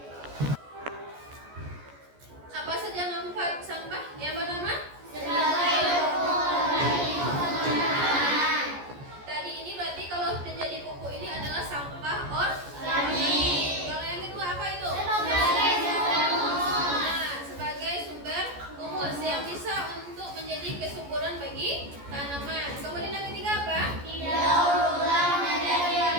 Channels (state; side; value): late; left; 14 ms